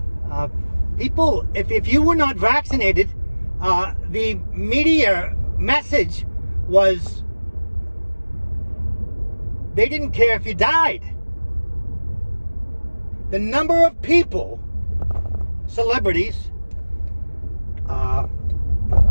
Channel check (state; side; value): inverted; both; correlation -1.00